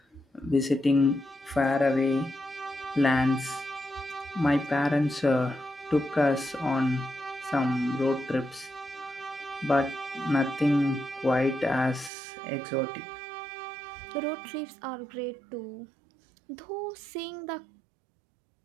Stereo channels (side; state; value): left; drops out; at 12.1 s